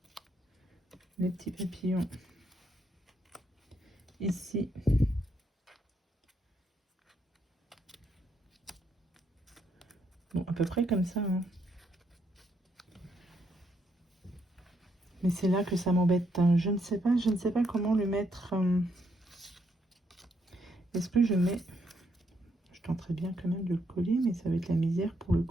les petits papillons ici. Bon, à peu près comme ça. Hein. Mais c'est là que ça m'embête. Hein. Je ne sais pas comment le mettre. Est-ce que je mets... Je tenterai bien quand même de le coller, mais ça va être la misère pour le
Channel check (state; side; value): normal; both; correlation 0.76